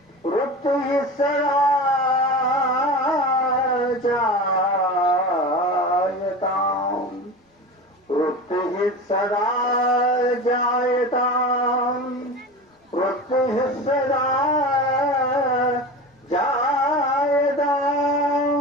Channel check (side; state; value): both; normal; correlation 0.30